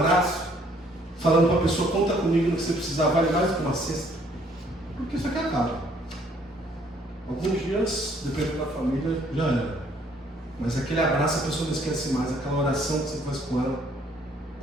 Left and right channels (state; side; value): normal; both; correlation 0.63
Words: falando para a pessoa, conta comigo no que você precisar, vale mais do que uma cesta? Porque isso aqui acaba. Alguns dias, dependendo da família, já era. Mas aquele abraço a pessoa não esquece mais. Aquela oração que você faz com ela,